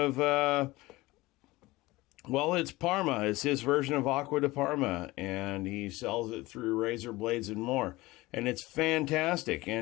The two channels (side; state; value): right; quieter; 20.1 dB